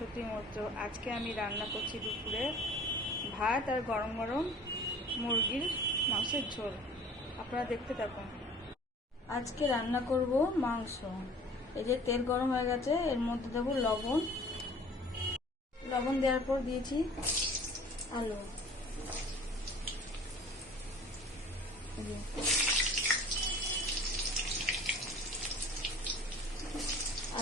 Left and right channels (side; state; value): both; normal; correlation 0.47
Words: মৈত্র। আজকে আমি রান্না করছি দুপুরে ভাত আর গরম গরম মুরগির মাংসের ঝোল। আপনারা দেখতে থাকুন। আজকে রান্না করব মাংস। এই যে তেল গরম হয়ে গেছে, এর মধ্যে দেবো লবণ। লবণ দেওয়ার পর দিয়েছি আলু।